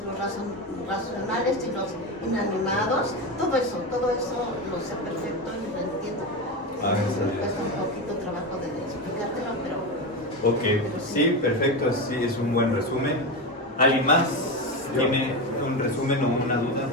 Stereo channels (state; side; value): normal; both; correlation 0.17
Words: los racionales y los inanimados, todo eso lo sé perfecto y lo entiendo. Me cuesta un poquito trabajo de explicártelo, pero... Ok, sí, perfecto, sí, es un buen resumen. ¿Alguien más tiene un resumen o una duda?